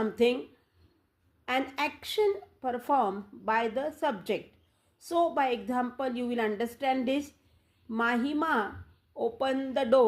an action performed by the subject. So by example you will understand this. Mahima opened the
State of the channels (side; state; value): both; identical; correlation 1.00